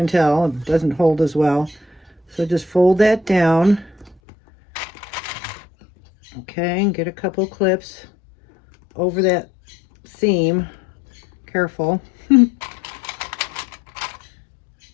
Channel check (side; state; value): right; drops out; at 4.2 s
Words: tell, it doesn't hold as well. So just fold that down. Okay, and get a couple clips over that seam. Careful.